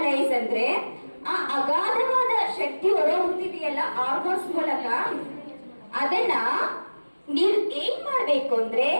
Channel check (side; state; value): both; inverted; correlation -1.00